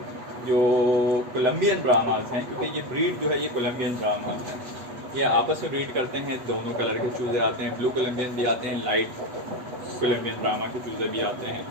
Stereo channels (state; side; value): late; left; 8.3 ms